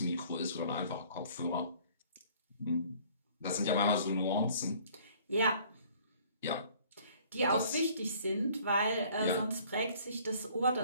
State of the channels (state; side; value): inverted; both; correlation -0.55